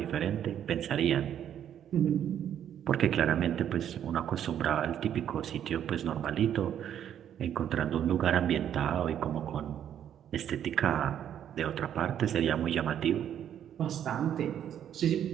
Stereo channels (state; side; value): quieter; left; 9.9 dB